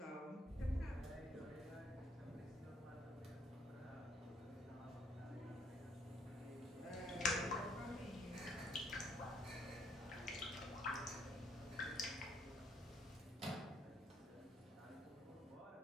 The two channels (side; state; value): both; normal; correlation 0.68